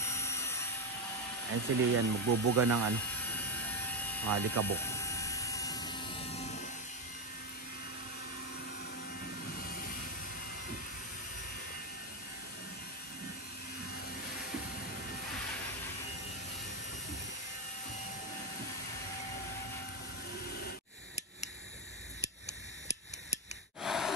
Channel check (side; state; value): both; normal; correlation 0.08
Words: Ayun si Leia, magbubuga ng ano, mga alikabok.